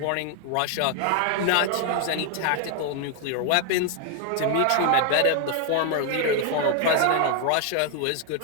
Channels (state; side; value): different; both; correlation 0.00